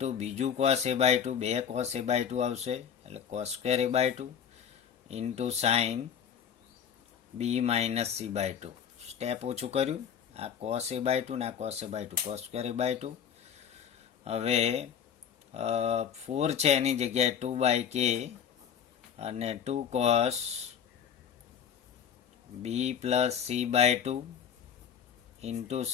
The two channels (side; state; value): right; quieter; 8.1 dB